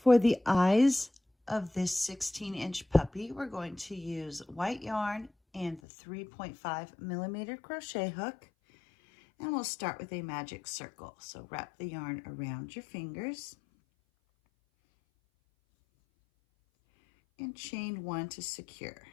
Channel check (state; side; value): drops out; right; at 5.8 s